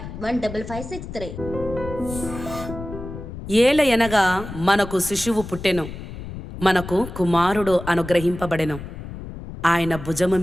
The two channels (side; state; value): left; noise; rumble, 10 dB below the sound